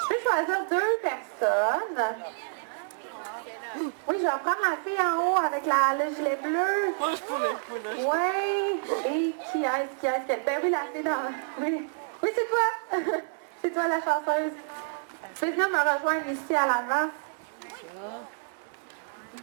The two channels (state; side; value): silent; left; digital silence